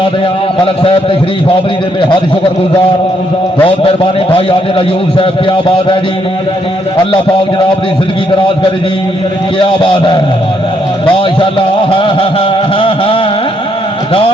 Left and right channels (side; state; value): both; normal; correlation 0.74